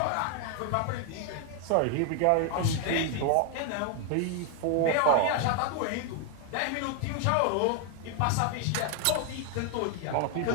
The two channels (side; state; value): both; different; correlation 0.00